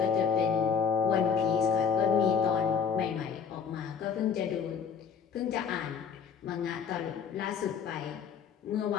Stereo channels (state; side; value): quieter; right; 6.7 dB